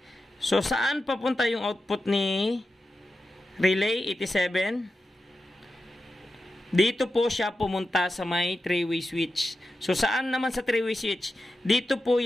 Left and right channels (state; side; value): normal; both; correlation 0.90